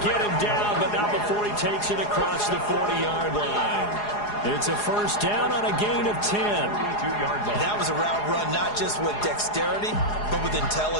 get him down, but not before he takes it across the 40-yard line. It's a 1st down on a gain of 10. That was a route run not just with dexterity, but with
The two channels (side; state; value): right; late; 4.8 ms